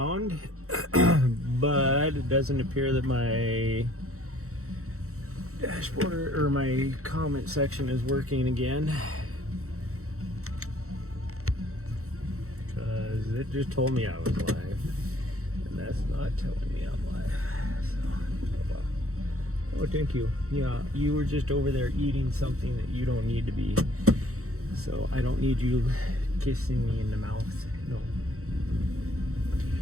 but it doesn't appear that my dashboard or my comment section is working again, because it just told me I was live, and that's not telling me I'm live. So, oh well. Oh, thank you. Yeah, you were just over there eating something that you don't need to be. So I don't need you kissing me in the mouth. No.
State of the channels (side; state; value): left; late; 0.64 ms